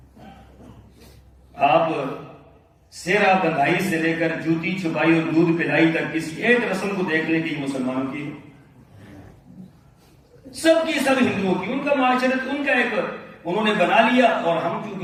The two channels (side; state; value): both; identical; correlation 1.00